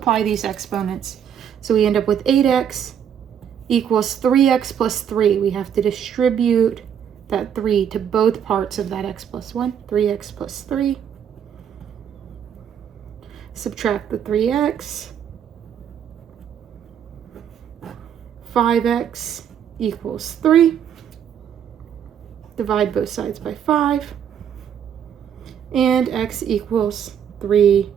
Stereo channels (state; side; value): quieter; left; 8.7 dB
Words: these exponents. So we end up with 8x equals 3x plus 3. We have to distribute that 3 to both parts of that x plus 1. 3x plus 3. Subtract the 3x. 5x equals 3. Divide both sides by 5. And x equals